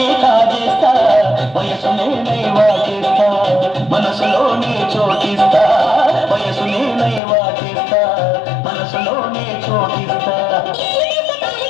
కాజేస్తా వయసు నేనై వాటిస్తా మనసులోనే చోటిస్తా వయసు నేనై వాటిస్తా మనసులోనే చోటిస్తా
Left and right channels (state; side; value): drops out; right; at 7.2 s